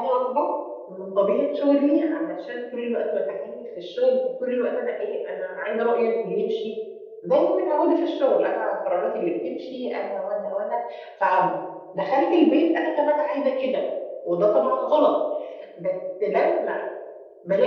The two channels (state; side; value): identical; both; correlation 1.00